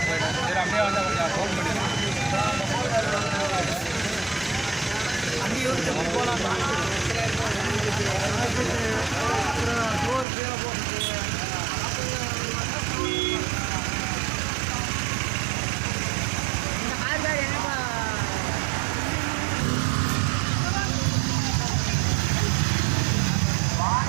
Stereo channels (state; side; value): drops out; left; at 10.2 s